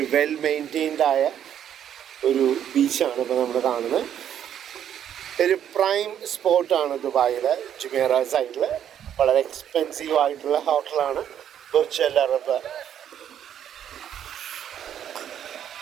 വെൽ മെയിൻറ്റെയിൻഡായ ഒരു ബീച്ചാണ് ഇപ്പോൾ നമ്മൾ കാണുന്നത്. ഒരു പ്രൈം സ്പോട്ടാണ് ദുബായിലെ ജുമേറ സൈഡിൽ. വളരെ എക്സ്പെൻസീവ് ആയിട്ടുള്ള ഹോട്ടലാണ് ബുർജ് അൽ അറബ്.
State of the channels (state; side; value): quieter; left; 9.8 dB